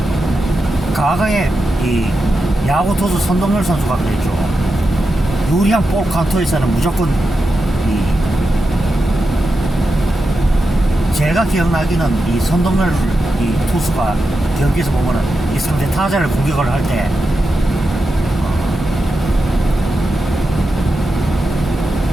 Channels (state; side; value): normal; both; correlation 0.89